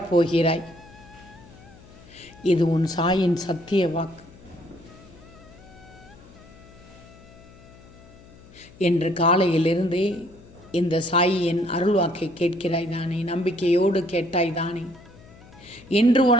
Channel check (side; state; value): left; noise; hum, 22 dB below the sound